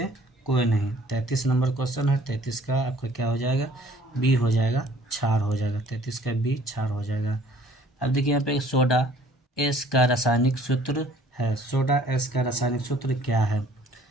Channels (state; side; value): normal; both; correlation 0.56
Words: कोई नहीं। 33 नंबर क्वेश्चन है। 33 का आपका क्या हो जाएगा, बी हो जाएगा, क्षार हो जाएगा। 33 का बी क्षार हो जाएगा। अब देखिए यहाँ पे सोडा एस का रासायनिक सूत्र है। सोडा एस का रासायनिक सूत्र क्या है।